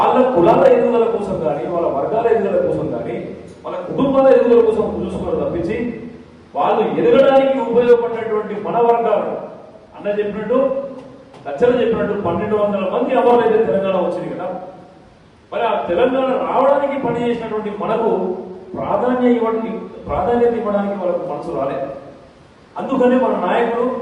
కులాల ఎదుగుదల కోసం కానీ వాళ్ళ వర్గాల ఎదుగుదల కోసం కానీ వాళ్ళ కుటుంబాల ఎదుగుదల కోసం చూసుకోవడం తప్పించి వాళ్ళు ఎదగడానికి ఉపయోగపడినటువంటి మన వర్గాలు అన్న చెప్పినట్టు లక్షలు చెప్పినట్టు 1200 మంది అమరులైతే తెలంగాణ వచ్చింది కదా. మరి ఆ తెలంగాణ రావడానికి పనిచేసినటువంటి మనకు ప్రాధాన్యత ఇవ్వడానికి వాళ్ళకు మనసు రాలేదు. అందుకని మన నాయకులు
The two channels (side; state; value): both; identical; correlation 1.00